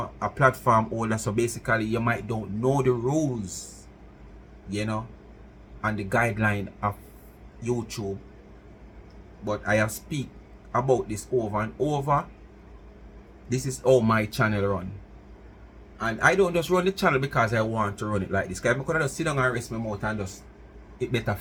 platform holder. So basically, you might don't know the rules, and the guideline of YouTube. But I have speak about this over and over. This is how my channel run. And I don't just run the channel because I want to run it like this. Because I could just sit down and rest my mouth and just it better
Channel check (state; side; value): identical; both; correlation 1.00